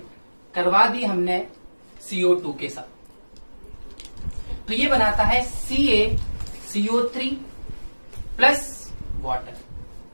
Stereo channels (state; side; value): inverted; both; correlation -1.00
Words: करवा दी हमने CO2 के साथ, तो ये बनाता है CaCO3 प्लस वाटर।